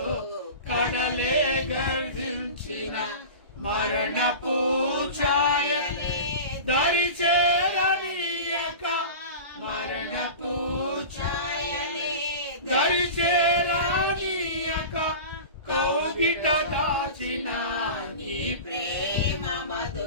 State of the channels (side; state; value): both; inverted; correlation -0.32